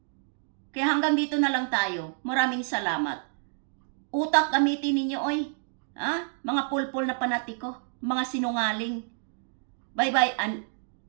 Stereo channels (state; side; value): silent; left; digital silence